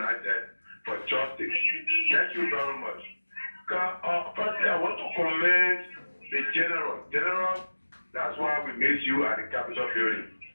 for Justice. Thank you very much. Firstly, I want to commend the General. General, that's why we made you at the Capitol building.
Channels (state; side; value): inverted; both; correlation -1.00